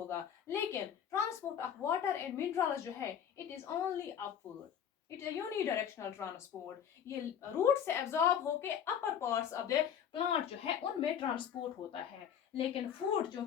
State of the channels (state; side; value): quieter; right; 8.7 dB